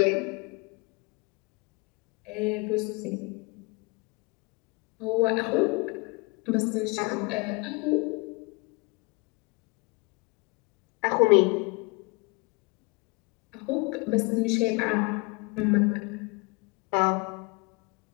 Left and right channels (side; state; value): right; quieter; 28.6 dB